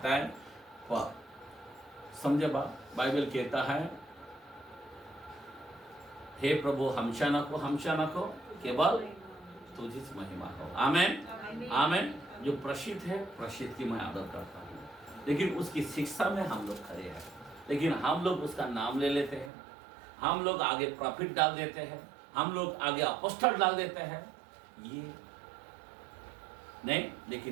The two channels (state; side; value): drops out; left; at 19.5 s